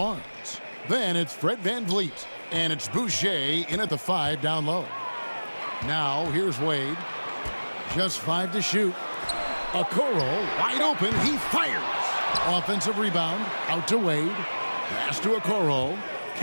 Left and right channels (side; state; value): both; inverted; correlation -1.00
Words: Then it's Fred VanVleet. And it's Boucher in at the 5 down low. Now here's Wade. Just 5 to shoot. Okoro wide open. He fires. Offensive rebound. Out to Wade. Pass to Okoro.